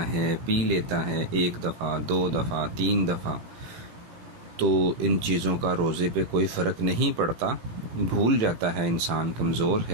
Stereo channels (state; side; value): late; left; 17 ms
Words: ہے، پی لیتا ہے، 1 دفعہ 2 دفعہ 3 دفعہ، تو ان چیزوں کا روزے پہ کوئی فرق نہیں پڑتا، بھول جاتا ہے انسان، کمزور